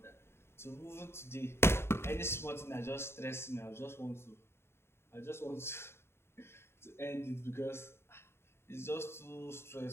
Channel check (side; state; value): right; late; 0.12 ms